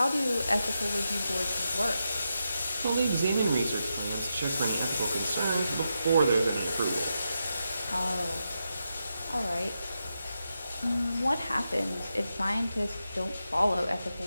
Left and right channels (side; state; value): both; inverted; correlation -0.87